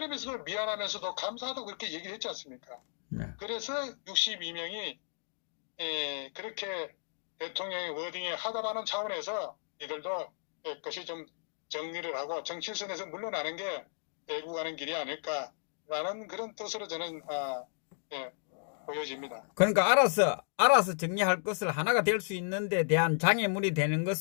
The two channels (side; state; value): right; silent; digital silence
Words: 미안하면서도 감사하다고 그렇게 얘기를 했지 않습니까? 네. 그래서 62명이 그렇게 대통령의 워딩에 하다라는 차원에서 이들도 그것이 좀 정리를 하고 정치선에서 물러나는 게 애국하는 길이 아닐까라는 그런 뜻으로 저는 보여집니다. 그러니까 알아서 정리할 것을 하나가 될 수 있는 데 대한 장애물이 되는